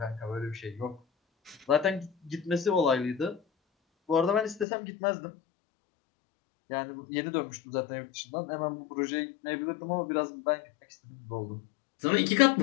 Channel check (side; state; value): right; drops out; at 4.7 s